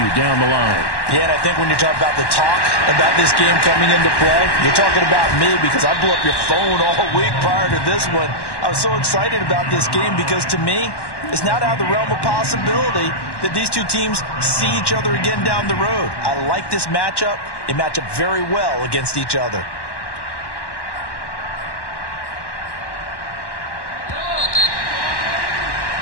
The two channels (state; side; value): late; right; 1.1 ms